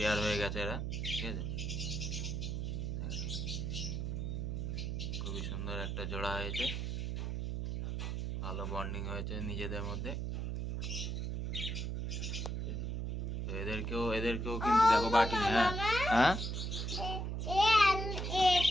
হয়ে গেছে এরা, ঠিক আছে। খুবই সুন্দর একটা জোড়া হয়েছে, ভালো বন্ডিং হয়েছে নিজেদের মধ্যে। তো এদেরকেও কিন্তু দেখো বাটি, হ্যাঁ হ্যাঁ।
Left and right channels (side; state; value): right; noise; hum, 2 dB below the sound